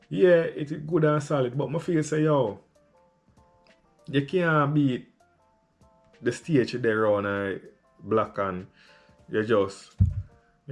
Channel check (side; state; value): both; identical; correlation 1.00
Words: yeah, it's good and solid, but I feel say, yo, you can't beat the stage there on black and you just,